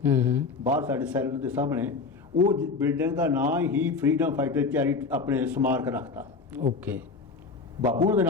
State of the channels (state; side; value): quieter; right; 4.5 dB